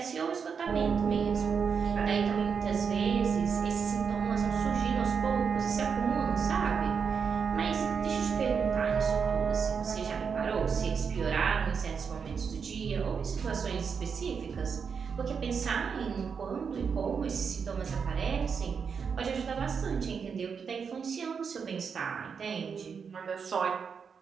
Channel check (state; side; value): quieter; left; 6.2 dB